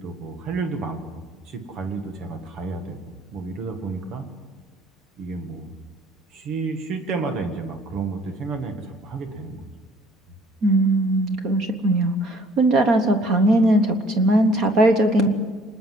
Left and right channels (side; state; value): both; normal; correlation 0.58